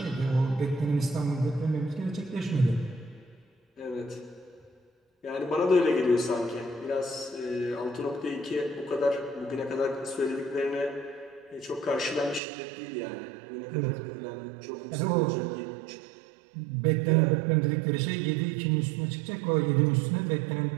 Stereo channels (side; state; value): left; drops out; at 12.4 s